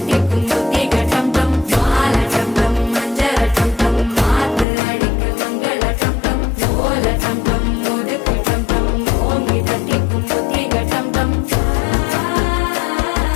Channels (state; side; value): drops out; right; at 4.7 s